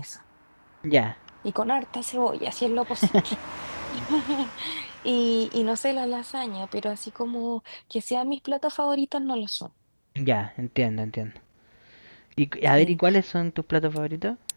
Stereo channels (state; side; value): inverted; both; correlation -1.00